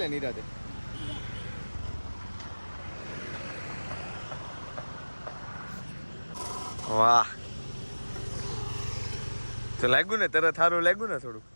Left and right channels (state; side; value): inverted; both; correlation -1.00